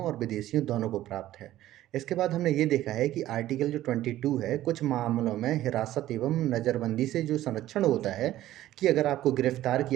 विदेशियों दोनों को प्राप्त है। इसके बाद हमने ये देखा है कि आर्टिकल जो 22 है, कुछ मामलों में हिरासत एवं नज़रबंदी से जो संरक्षण होता है कि अगर आपको गिरफ्तार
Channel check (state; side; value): quieter; left; 14.2 dB